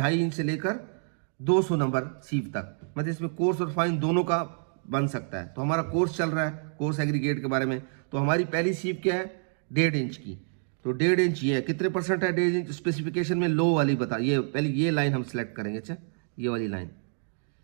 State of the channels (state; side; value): silent; left; 59 dB below the other